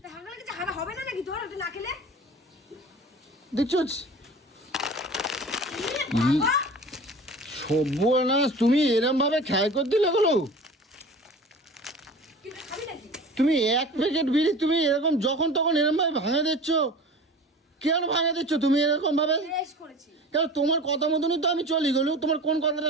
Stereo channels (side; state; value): both; normal; correlation 0.39